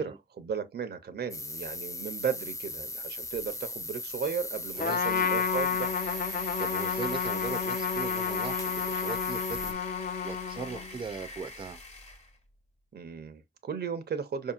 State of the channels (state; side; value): normal; both; correlation 0.05